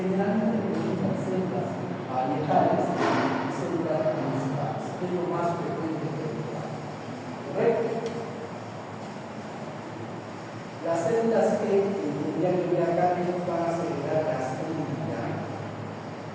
preguntan células parietales y células principales, que es lo más frecuente de preguntar. ¿Correcto? Las células que tendrían que ver acá que nos van a secretar gastrina.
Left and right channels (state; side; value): identical; both; correlation 1.00